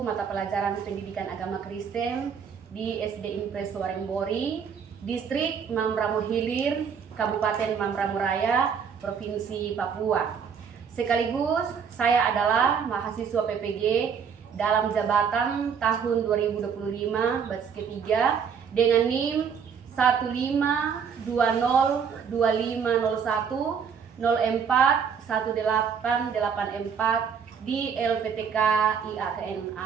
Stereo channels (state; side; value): quieter; left; 6.8 dB